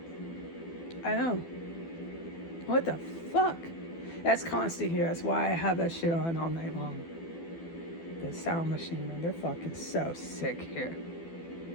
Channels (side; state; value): right; late; 12 ms